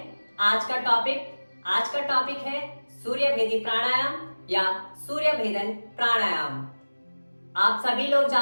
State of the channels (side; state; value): both; inverted; correlation -1.00